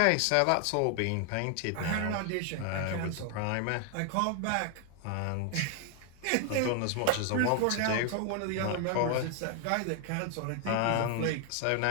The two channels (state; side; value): different; both; correlation 0.00